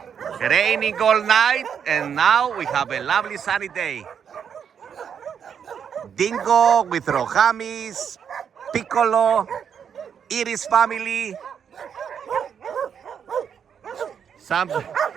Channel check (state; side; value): quieter; left; 7.7 dB